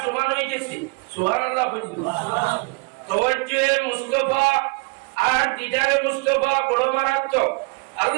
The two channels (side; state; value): left; quieter; 29.1 dB